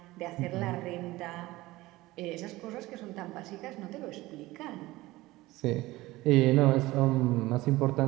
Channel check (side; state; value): left; quieter; 18.9 dB